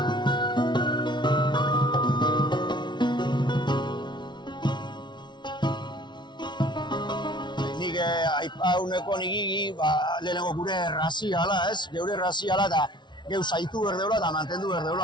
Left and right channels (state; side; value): late; right; 0.22 ms